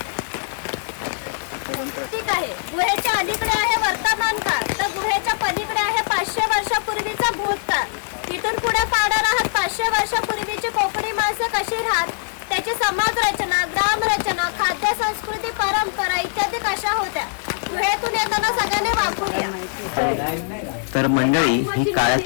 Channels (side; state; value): right; silent; 56 dB below the other